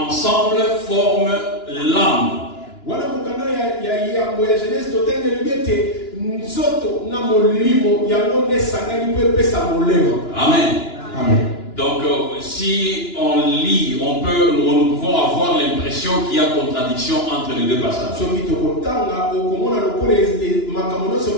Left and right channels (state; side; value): late; right; 2.9 ms